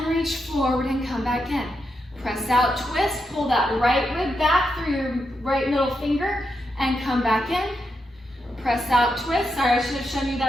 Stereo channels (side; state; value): both; normal; correlation 0.84